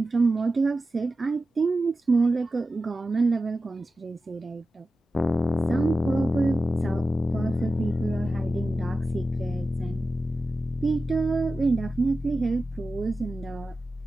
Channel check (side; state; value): both; normal; correlation 0.93